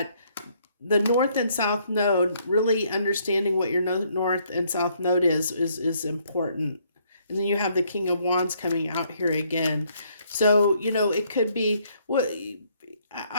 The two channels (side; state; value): both; inverted; correlation -0.68